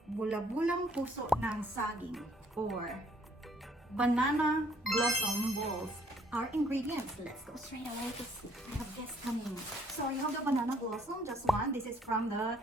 bula-bulang puso ng saging or banana blossom balls. Our ingredients, let's go straight away to see. I have guests coming. So you have the banana blossom, just one. This is from the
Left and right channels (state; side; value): normal; both; correlation 0.64